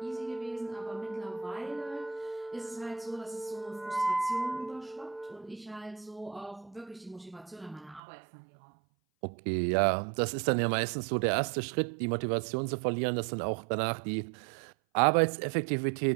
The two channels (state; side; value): drops out; left; at 8.0 s